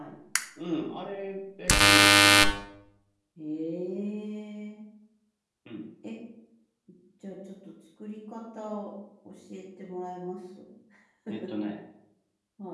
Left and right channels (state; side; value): identical; both; correlation 1.00